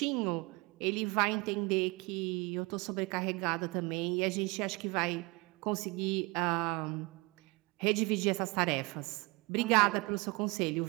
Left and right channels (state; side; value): quieter; left; 25.8 dB